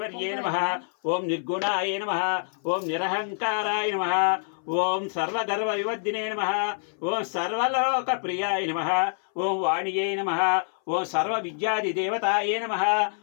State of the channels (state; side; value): silent; right; 59 dB below the other